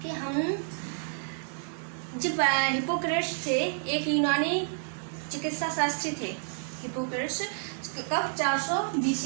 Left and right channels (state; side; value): silent; left; digital silence